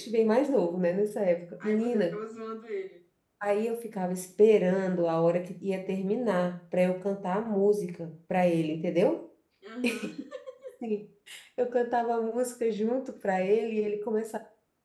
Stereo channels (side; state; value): both; identical; correlation 1.00